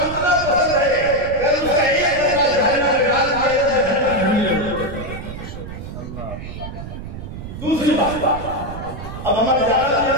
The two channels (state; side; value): noise; right; rumble, 10 dB below the sound